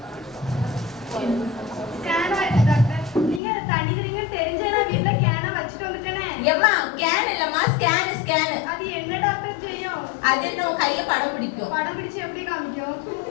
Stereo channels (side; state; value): right; drops out; at 3.4 s